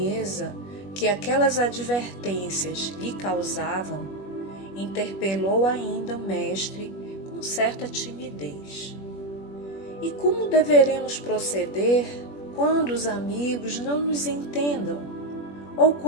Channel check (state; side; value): late; right; 21 ms